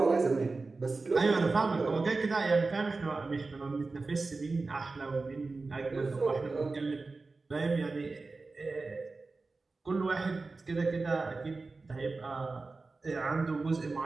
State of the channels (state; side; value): quieter; left; 3.8 dB